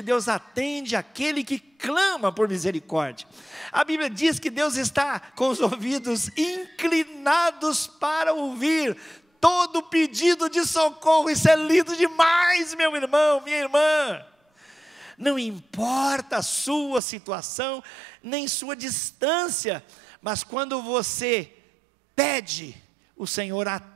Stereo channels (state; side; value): drops out; left; at 17.0 s